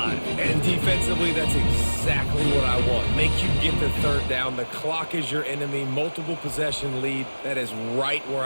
And defensively, that's exactly what I want. Make you get the third down. The clock is your enemy. Multiple possession lead. That is right where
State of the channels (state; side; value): inverted; both; correlation -1.00